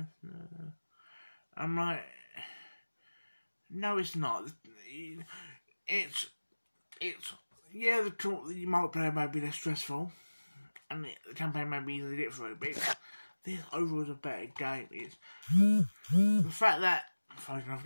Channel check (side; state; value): both; inverted; correlation -1.00